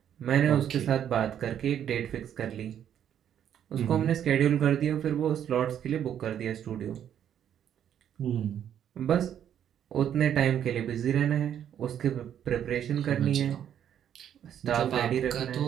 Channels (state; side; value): quieter; left; 9.7 dB